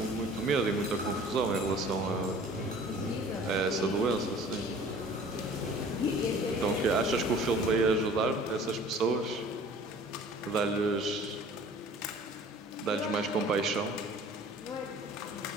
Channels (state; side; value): normal; both; correlation 0.48